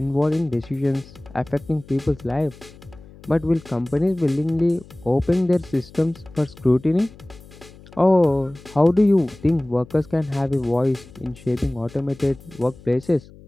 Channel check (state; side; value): noise; left; hum, 21 dB below the sound